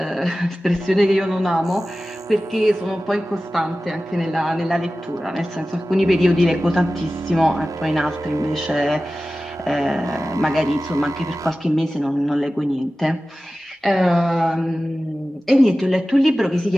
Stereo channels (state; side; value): normal; both; correlation 0.95